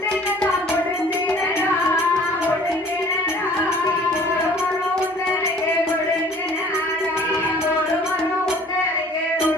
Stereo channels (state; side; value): normal; both; correlation 0.51